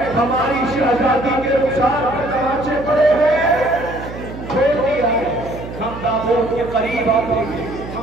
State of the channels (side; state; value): right; noise; hum, 11 dB below the sound